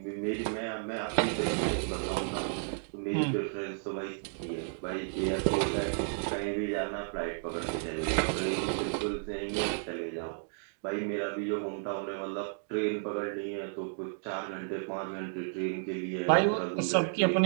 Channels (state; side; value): silent; left; digital silence